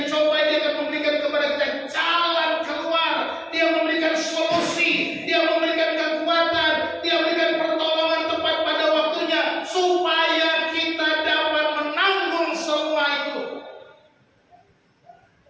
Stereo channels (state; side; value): identical; both; correlation 1.00